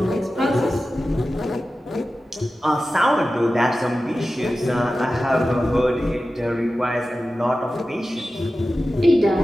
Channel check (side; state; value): both; normal; correlation 0.94